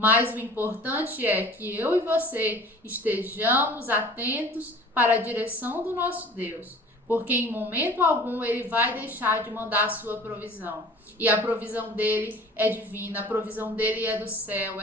o importante é que eu e você estejamos atentos para a direção do nosso Deus, porque em momento algum Ele vai deixar de mandar a sua provisão. E a provisão dele é divina, a provisão dele é do céu,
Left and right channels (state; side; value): normal; both; correlation 0.45